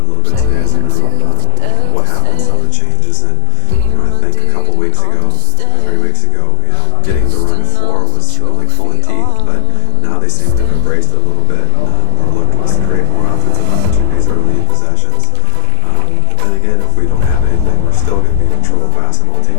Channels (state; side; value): different; both; correlation 0.00